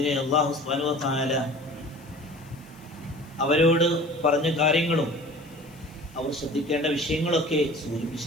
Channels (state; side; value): noise; left; hiss, 27 dB below the sound